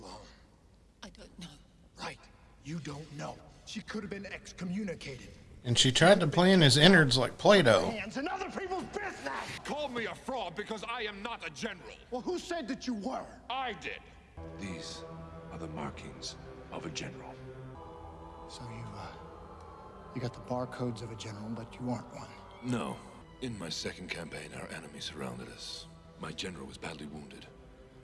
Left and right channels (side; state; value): both; identical; correlation 1.00